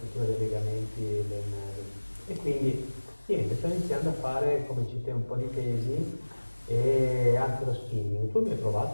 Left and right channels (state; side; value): inverted; both; correlation -1.00